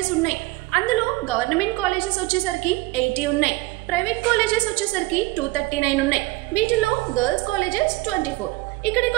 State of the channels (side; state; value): left; quieter; 20.9 dB